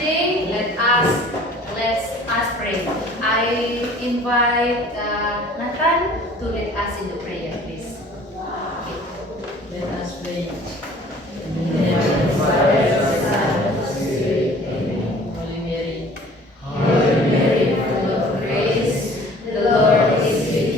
let's pray. I invite Nathan to lead us in the prayer, please. Let us pray. In the name of the Father, the Son, and the Spirit. Amen. Holy Mary, Hail Mary, full of grace, the Lord is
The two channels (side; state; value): both; normal; correlation 0.50